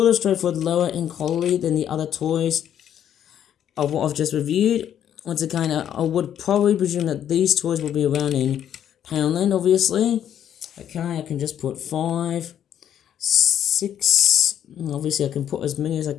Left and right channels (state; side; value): quieter; right; 9.9 dB